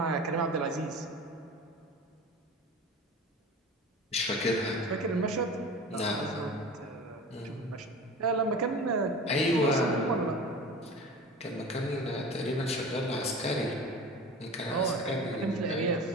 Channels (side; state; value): both; normal; correlation 0.35